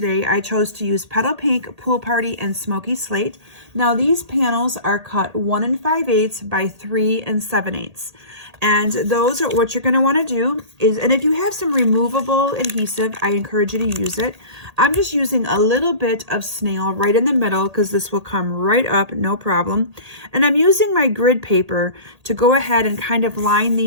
I chose to use Petal Pink, Pool Party, and Smoky Slate. Now these panels are cut 1 5/8 by 3 7/8. And those are what you're going to want to do is, and if you have some removable adhesive, I encourage you to use it. I'm just using a little bit of snail right in the middle because this will come right up, no problem. And I'm using my grid paper to go ahead and kind of line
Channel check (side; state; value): left; late; 1.8 ms